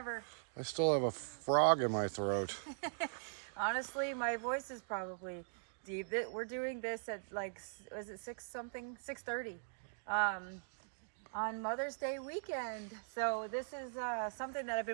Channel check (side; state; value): left; silent; digital silence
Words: I still have a frog in my throat. Honestly, my voice is probably deep. We're doing this at like, was it 6 something? 6:30 on Mother's Day weekend. So this is something that